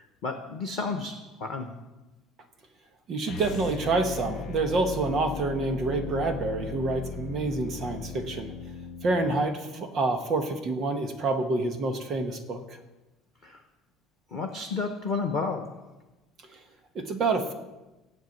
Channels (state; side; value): normal; both; correlation 0.49